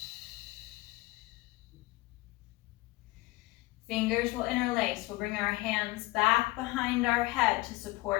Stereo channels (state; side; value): quieter; right; 20.0 dB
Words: Fingers will interlace. We'll bring our hands back behind our head to